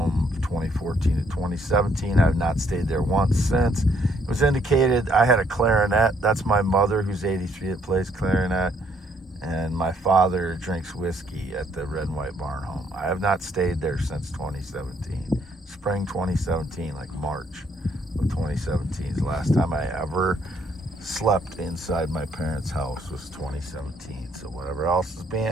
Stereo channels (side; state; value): both; normal; correlation 0.68